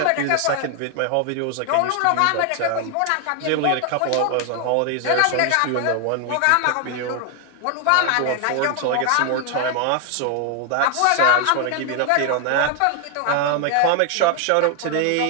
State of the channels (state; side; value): different; both; correlation 0.00